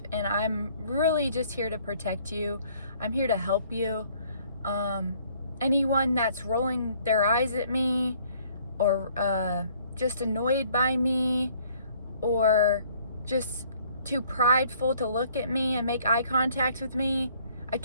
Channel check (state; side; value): inverted; both; correlation -0.60